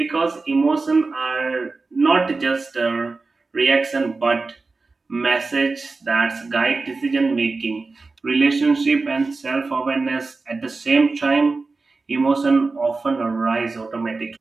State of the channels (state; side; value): quieter; left; 3.8 dB